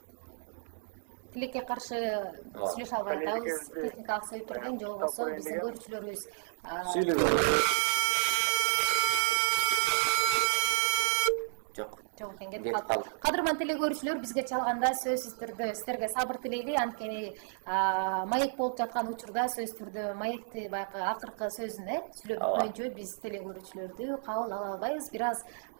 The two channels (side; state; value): left; silent; digital silence